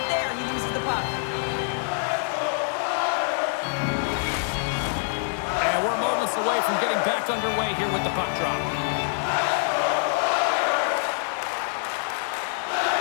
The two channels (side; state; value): right; silent; 61 dB below the other